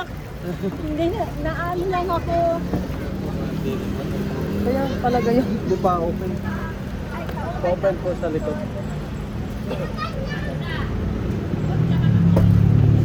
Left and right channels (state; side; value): identical; both; correlation 1.00